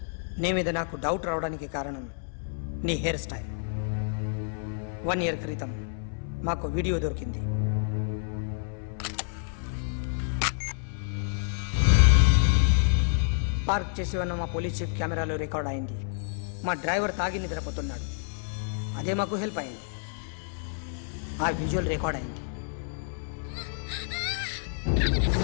నీ మీద నాకు డౌట్ రావడానికి కారణం నీ హెయిర్ స్టైల్. 1 year క్రితం మాకు వీడియో దొరికింది. పార్క్ చేసి ఉన్న మా పోలీస్ జీప్ కెమెరాలో రికార్డ్ అయింది. మా డ్రైవర్ తాగి నిద్రపోతున్నాడు. అదే మాకు హెల్ప్ అయింది. ఆ విజువల్ రికార్డ్ అయింది.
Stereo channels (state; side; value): silent; right; 59 dB below the other